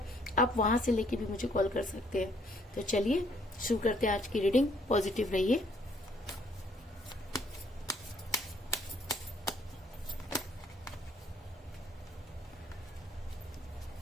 आप वहां से लेके भी मुझे कॉल कर सकते हैं। तो चलिए शुरू करते हैं आज की रीडिंग। पॉजिटिव रहिए।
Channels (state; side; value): normal; both; correlation 0.65